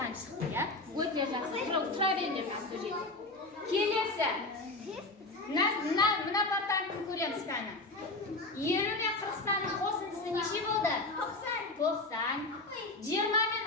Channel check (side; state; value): right; quieter; 3.0 dB